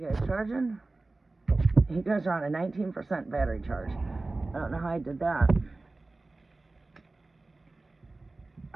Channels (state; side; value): quieter; left; 3.2 dB